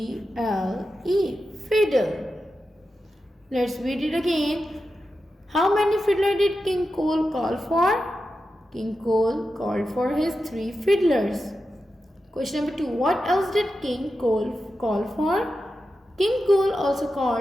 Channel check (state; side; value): normal; both; correlation 0.90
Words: fiddle. Let's read it again. How many fiddlers did King Cole call for? King Cole called for his 3 fiddlers. Question number 2. What else did King Cole call for? King Cole also